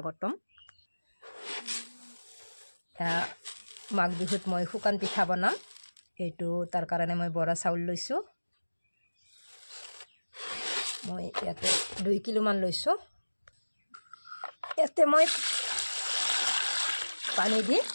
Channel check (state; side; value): inverted; both; correlation -1.00